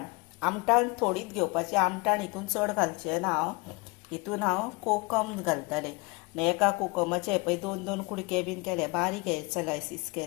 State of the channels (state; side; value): quieter; right; 26.8 dB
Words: आमटाण थोडीच घेवपाची. आमटाण हितून चड घालचें ना हांव. हितून हांव कोकम घालतलें. आनी एका कोकमाचे हे पळय 2 कुडके बीन केले, बारीक हे स्लायसीस